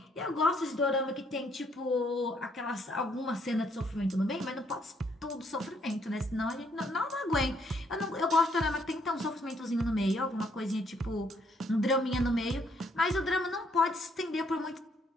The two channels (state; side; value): normal; both; correlation 0.69